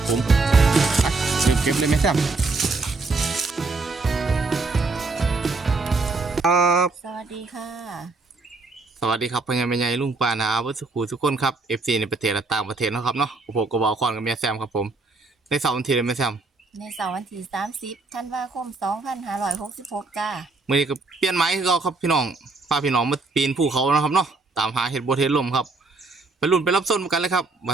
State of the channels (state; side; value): quieter; left; 3.7 dB